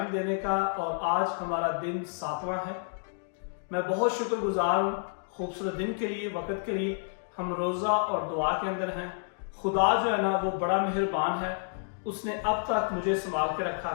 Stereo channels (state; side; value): silent; right; digital silence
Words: देने का। और आज हमारा दिन 7वां है। मैं बहुत शुक्रगुजार हूँ खूबसूरत दिन के लिए, वक्त के लिए। हम रोज़ा और दुआ के अंदर हैं। खुदा जो है ना वो बड़ा मेहरबान है। उसने अब तक मुझे संभाल के रखा